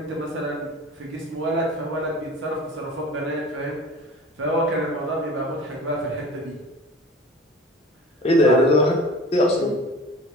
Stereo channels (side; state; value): both; normal; correlation 0.40